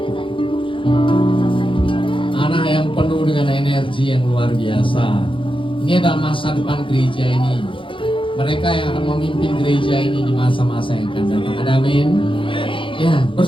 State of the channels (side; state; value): right; late; 0.25 ms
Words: Anak yang penuh dengan energi yang luar biasa. Ini adalah masa depan gereja ini. Mereka yang akan memimpin gereja ini di masa-masa yang akan datang. Ada amin. Ya,